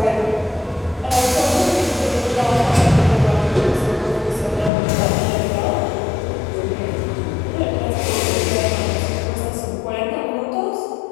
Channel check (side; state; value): right; drops out; at 4.7 s